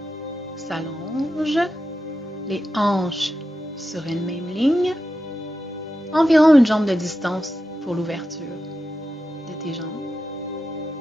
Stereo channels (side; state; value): both; normal; correlation 0.90